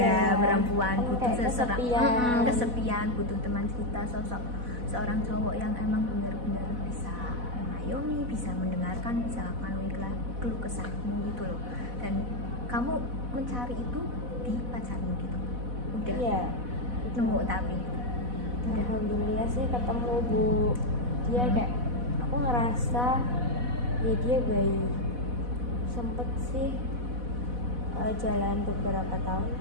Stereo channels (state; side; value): late; left; 4.1 ms